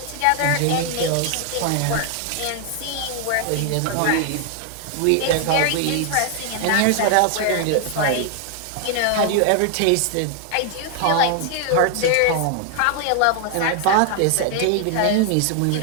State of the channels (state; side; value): different; both; correlation 0.00